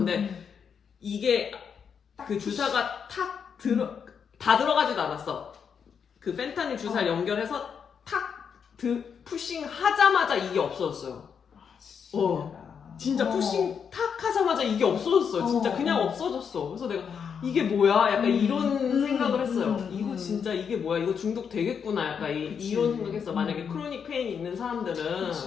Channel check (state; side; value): quieter; right; 6.9 dB